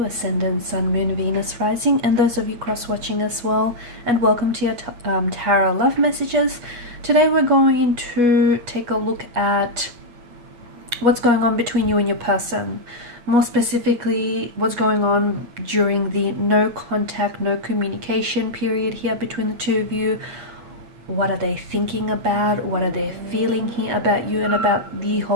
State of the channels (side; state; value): left; late; 8.3 ms